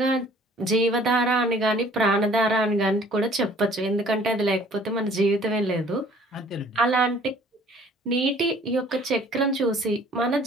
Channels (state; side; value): normal; both; correlation 0.54